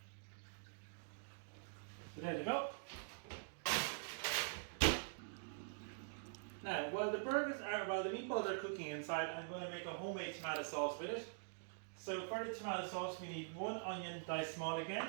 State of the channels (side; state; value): left; silent; digital silence